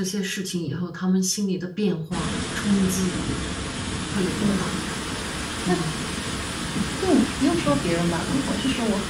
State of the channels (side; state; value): both; identical; correlation 1.00